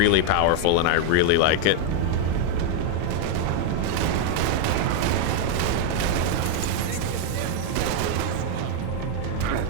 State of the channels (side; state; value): both; different; correlation 0.00